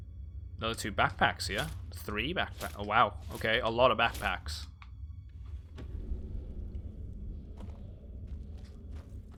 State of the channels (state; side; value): identical; both; correlation 1.00